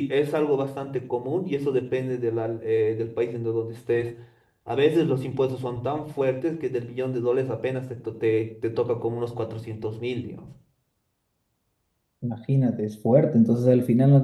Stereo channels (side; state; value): both; identical; correlation 1.00